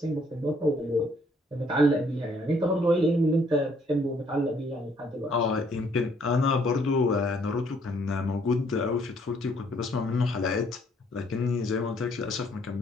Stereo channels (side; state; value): both; normal; correlation 0.65